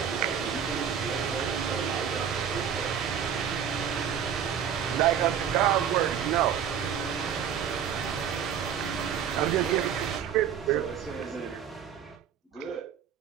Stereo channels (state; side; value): quieter; left; 8.4 dB